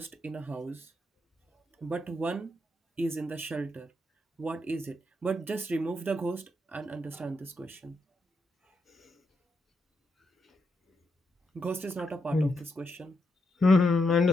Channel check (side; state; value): both; normal; correlation 0.81